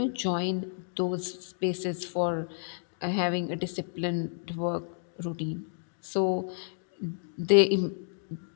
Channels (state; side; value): silent; right; digital silence